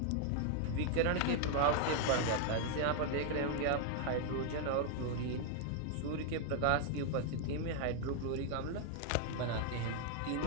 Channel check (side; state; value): both; different; correlation 0.00